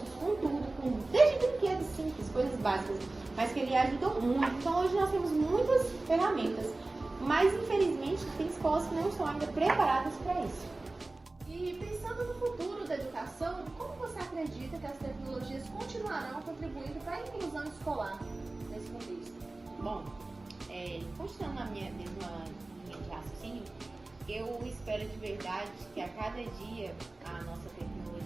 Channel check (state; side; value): quieter; left; 3.0 dB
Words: com tudo, desde brinquedos simples, coisas básicas, mas que ele ajudou muito. Então hoje nós temos muitas ferramentas, mas infelizmente tem escolas que não estão ainda preparadas para isso. E pensando no futuro da educação, como você acredita que as tecnologias continuarão contribuindo para a inclusão escolar nesse contexto? Bom, continuando na minha mesma linha de raciocínio, eu espero de verdade que a cada dia a nossa